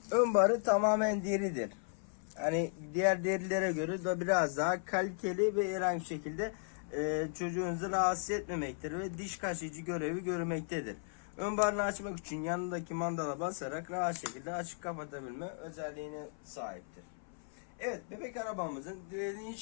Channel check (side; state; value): right; silent; 54 dB below the other